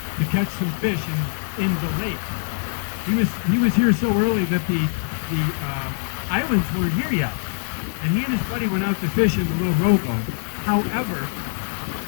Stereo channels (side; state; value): right; silent; digital silence